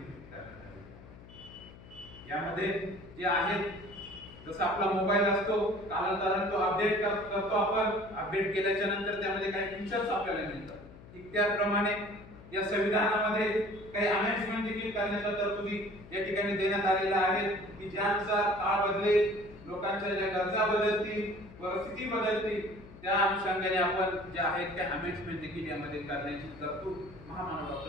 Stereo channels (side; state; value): left; noise; hum, 19 dB below the sound